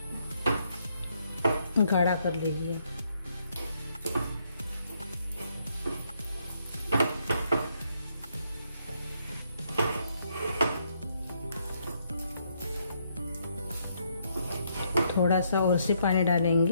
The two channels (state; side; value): inverted; both; correlation -0.74